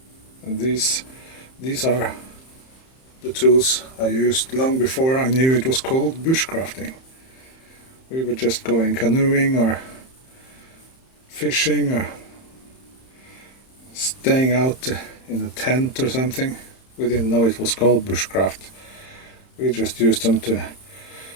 And these are the tools I used long before I knew it was called bushcrafting. We were just going canoeing or fishing or staying out in a tent or something. We didn't know it was called bushcraft. We just used them to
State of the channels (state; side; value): late; right; 31 ms